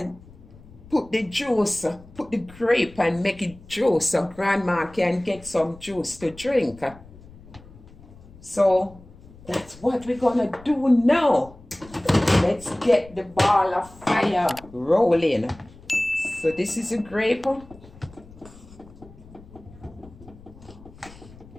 put the juice, put the grape and make it juice so grandma can get some juice to drink. So that's what we're gonna do now. Let's get the ball of fire rolling. So this is a grape. I'm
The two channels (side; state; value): left; noise; rumble, 21 dB below the sound